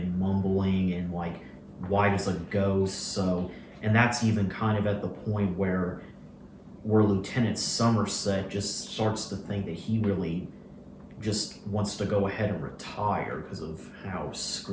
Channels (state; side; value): identical; both; correlation 1.00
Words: mumbling and like white as a ghost. And that's even kind of at the point where Lieutenant Somerset just starts to think that he really just wants to go ahead and retire because of how